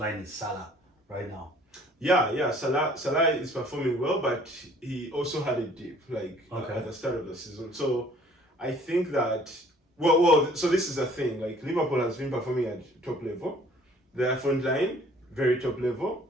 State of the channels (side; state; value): both; normal; correlation 0.56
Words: is Salah right now. Yeah. Salah is performing well, but he also had a dip at the start of the season. So I think that so this is the thing. Liverpool has been performing at top level. Their front line very top level.